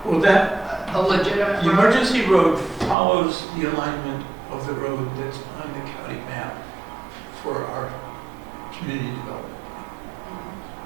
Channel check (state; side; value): drops out; left; at 3.0 s